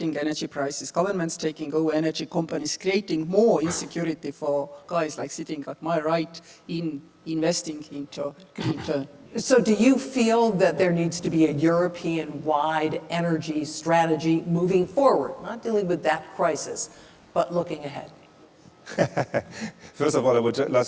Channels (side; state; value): both; identical; correlation 1.00